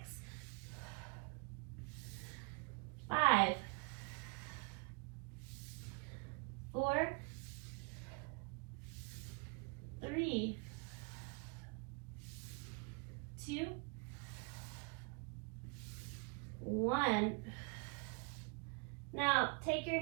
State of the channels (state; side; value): quieter; left; 34.3 dB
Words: 5, 4, 3, 2, 1. Now, take your